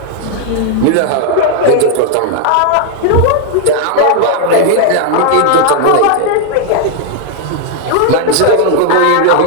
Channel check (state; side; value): different; both; correlation 0.00